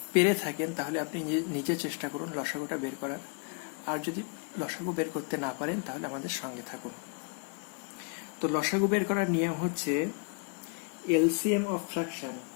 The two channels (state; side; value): quieter; right; 35.6 dB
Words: পেরে থাকেন তাহলে আপনি নিজে চেষ্টা করুন লসাগুটা বের করার, আর যদি লসাগু বের করতে না পারেন তাহলে আমাদের সঙ্গে থাকুন। তো লসাগু বের করার নিয়ম হচ্ছে এলসিএম অফ ফ্র্যাকশন।